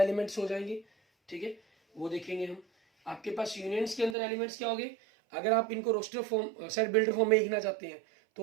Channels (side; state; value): left; drops out; at 4.2 s